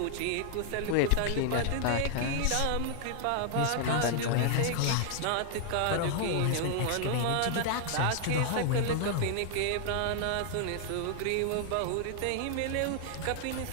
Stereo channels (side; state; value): both; different; correlation 0.00